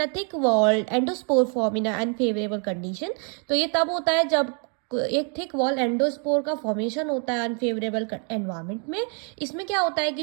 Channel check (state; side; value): quieter; left; 39.6 dB